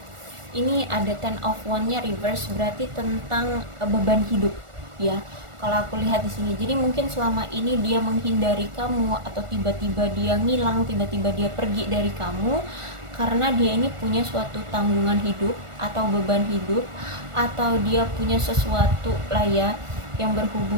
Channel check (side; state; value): left; late; 1.4 ms